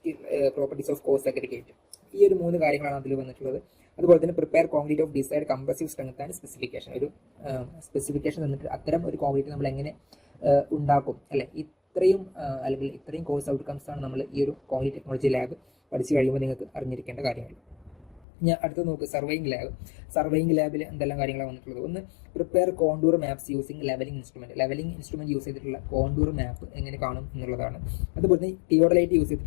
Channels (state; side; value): drops out; right; at 18.2 s